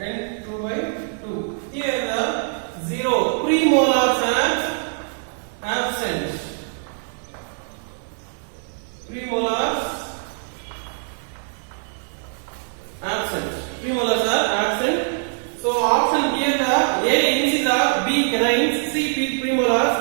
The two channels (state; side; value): silent; left; digital silence